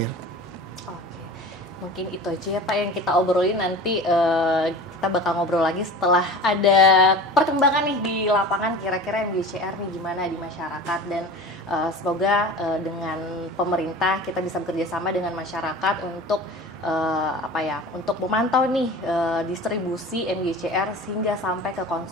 Mungkin itu aja ya Pak yang kita obrolin, nanti kita bakal ngobrol lagi setelah ada perkembangan nih di lapangan, kira-kira MGCR nih gimana di masyarakat, dan semoga dengan pemerintah kita bisa bekerja sama dengan masyarakat untuk untuk memantau nih distribusi MGCR sehingga sampai ke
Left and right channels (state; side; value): normal; both; correlation 0.36